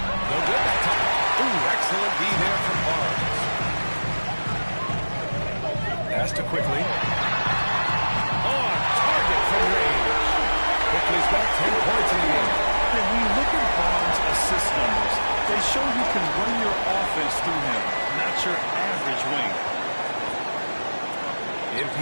No good that time. Ooh, excellent D there from Barnes. Pass to quickly. On target from range. Quickly's got 10 points in the game. And when you look at Barnes' assist numbers, they show you can run your offense through him, not your average wing.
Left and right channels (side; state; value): both; inverted; correlation -1.00